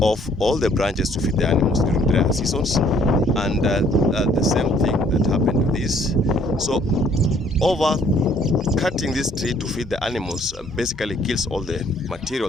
all the branches to feed the animals during dry seasons, and the same thing that happened to this. So over cutting this tree to feed the animals basically kills all the material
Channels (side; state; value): both; normal; correlation 0.61